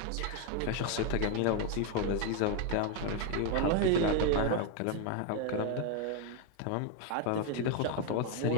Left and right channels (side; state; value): both; different; correlation 0.01